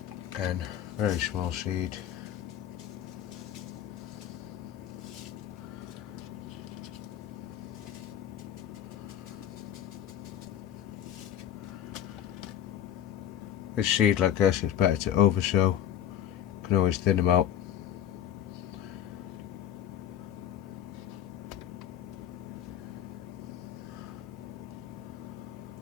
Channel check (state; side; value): quieter; right; 10.5 dB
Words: Again, very small seed. With seed like this, it's better to oversow. You can always thin them out.